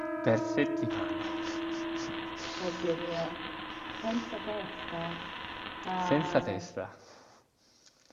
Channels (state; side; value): identical; both; correlation 1.00